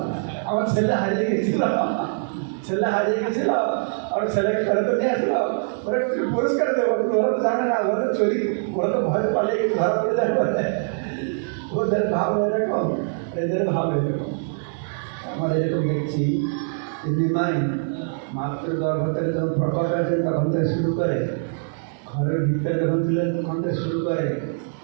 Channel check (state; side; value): silent; left; digital silence